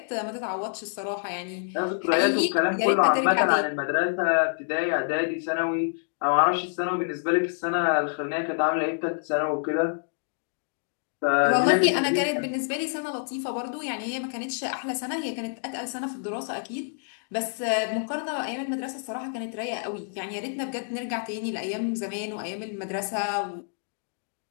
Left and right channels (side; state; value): right; silent; digital silence